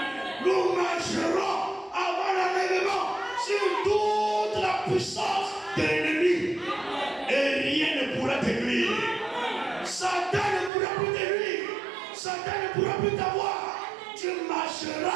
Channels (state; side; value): drops out; left; at 10.7 s